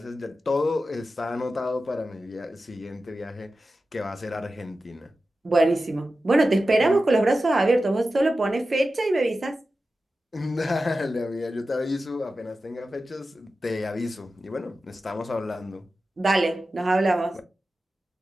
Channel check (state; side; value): normal; both; correlation 0.93